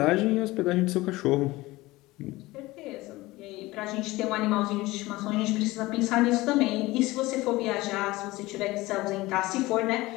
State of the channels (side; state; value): right; quieter; 19.7 dB